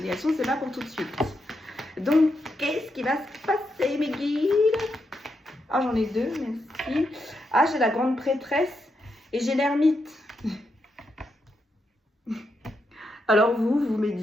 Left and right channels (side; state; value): both; normal; correlation 0.83